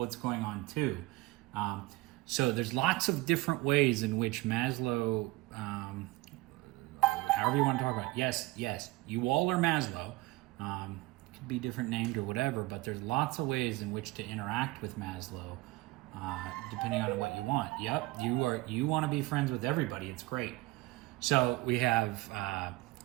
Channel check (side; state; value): left; quieter; 20.6 dB